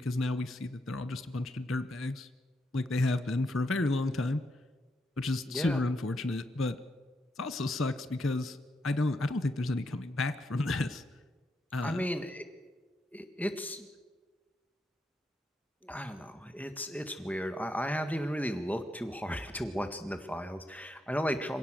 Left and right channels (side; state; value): both; normal; correlation 0.80